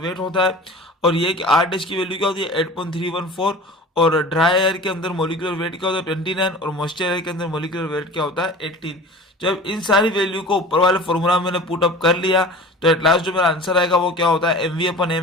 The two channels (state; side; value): normal; both; correlation 0.39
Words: होता है, और ये कि आर डैश की वैल्यू क्या होती है 8.314, और ड्राई एयर के अंदर मोलिकुलर वेट क्या होता है 29, और मॉइस्चर एयर के अंदर मोलिकुलर वेट क्या होता है 18। जब इन सारी वैल्यू को ऊपर वाले फॉर्मूला में मैंने पुट अप कर लिया तो एट लास्ट जो मेरा आंसर आएगा वो क्या होता है, M V upon